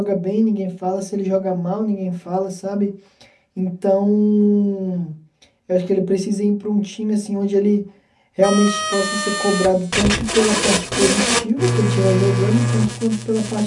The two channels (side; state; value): both; identical; correlation 1.00